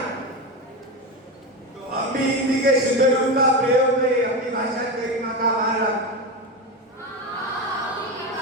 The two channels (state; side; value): normal; both; correlation 0.18